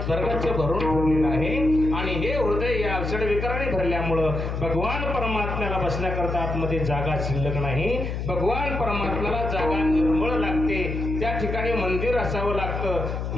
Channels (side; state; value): left; noise; hum, 3 dB below the sound